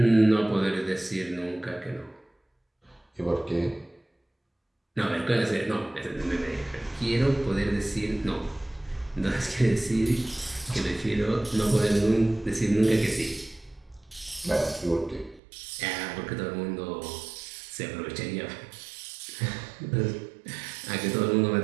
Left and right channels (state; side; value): drops out; left; at 15.4 s